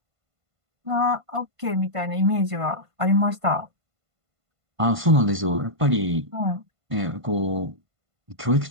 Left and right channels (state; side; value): late; left; 1.5 ms